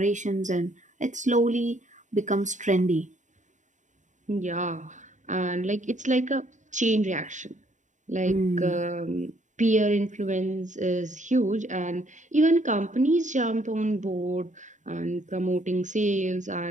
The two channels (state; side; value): late; left; 0.36 ms